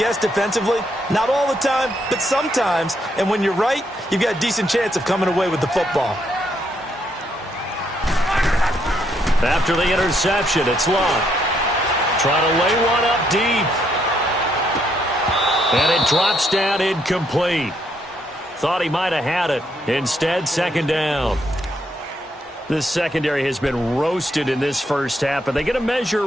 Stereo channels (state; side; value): normal; both; correlation 0.74